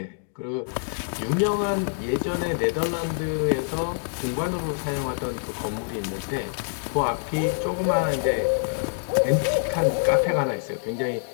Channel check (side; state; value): right; silent; digital silence